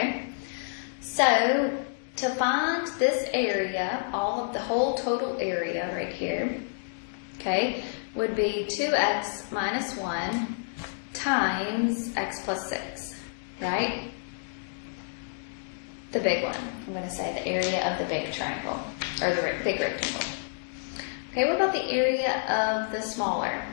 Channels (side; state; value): right; silent; digital silence